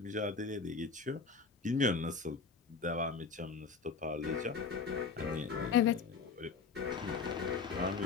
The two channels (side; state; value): right; quieter; 5.0 dB